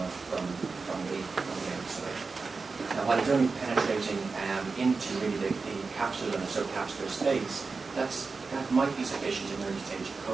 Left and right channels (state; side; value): quieter; left; 4.4 dB